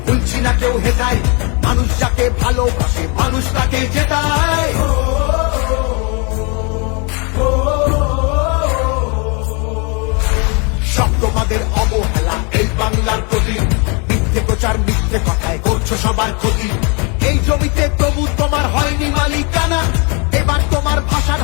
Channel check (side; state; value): right; quieter; 33.0 dB